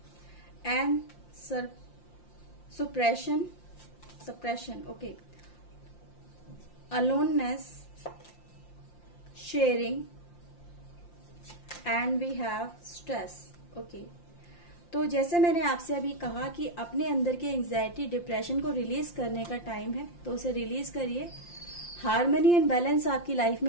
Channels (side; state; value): right; late; 5.7 ms